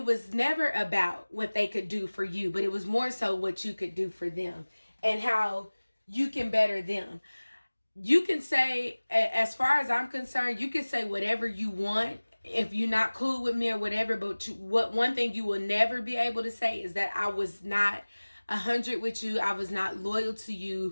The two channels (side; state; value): both; inverted; correlation -1.00